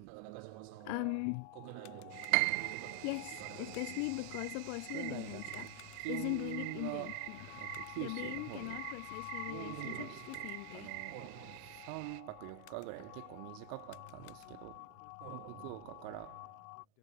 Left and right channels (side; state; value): both; different; correlation 0.00